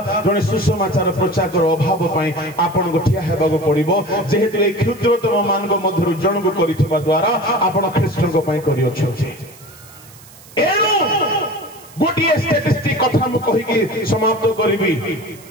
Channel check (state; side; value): noise; right; hiss, 22 dB below the sound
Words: जने सुसमाचार प्रचार अभाव पाई आपन को ठिया हेबाको पड़िबो। जेहेतु ए क्षुद्रतम मानक मध्यरु जन को करिथिबा द्वारा आपन ख्रीष्ट को पाई करियो छथि। एनु गोटिए स्टैटिस्टिक कथा मु कहि कि समाप्त करिबी।